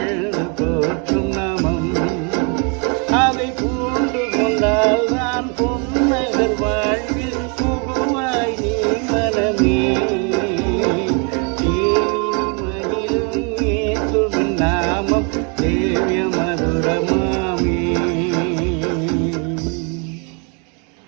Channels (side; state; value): left; quieter; 35.4 dB